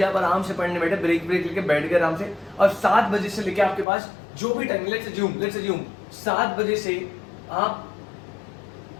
आप आराम से पढ़ने बैठे, ब्रेक लेके बैठ गए आराम से, और 7 बजे से लेके आपके पास जो भी टाइम, लेट्स अज्यूम 7 बजे से आप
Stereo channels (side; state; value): right; drops out; at 3.9 s